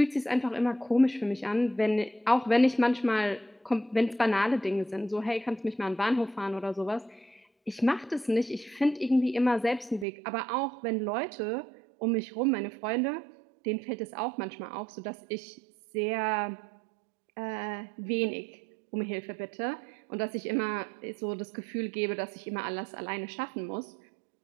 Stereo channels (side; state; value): left; drops out; at 10.1 s